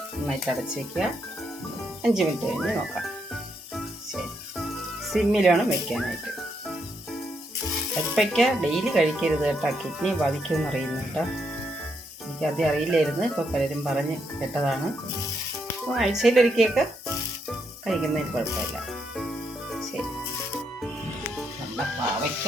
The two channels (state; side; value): normal; both; correlation 0.78